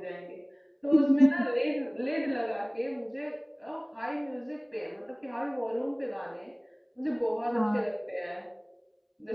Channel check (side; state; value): both; identical; correlation 1.00